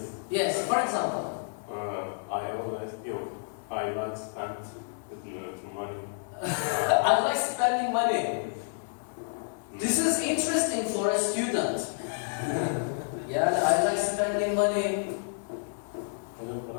Yes. For example. I always feel I like spend money. I like spending money. This is interesting for a student. Yeah, I like spending money. Onu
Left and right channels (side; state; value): right; silent; digital silence